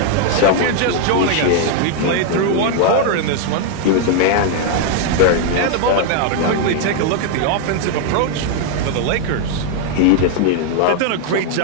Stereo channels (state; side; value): different; both; correlation 0.00